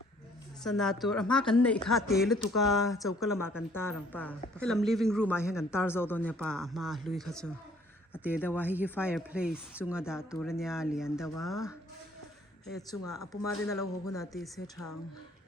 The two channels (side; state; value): both; normal; correlation 0.60